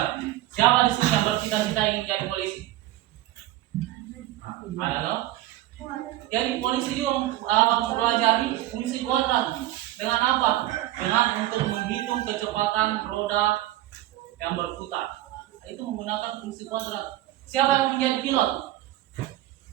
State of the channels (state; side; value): quieter; left; 15.2 dB